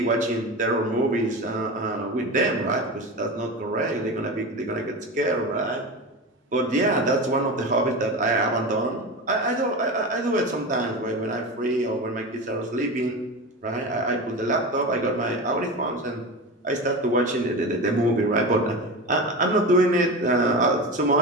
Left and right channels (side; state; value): both; normal; correlation 0.25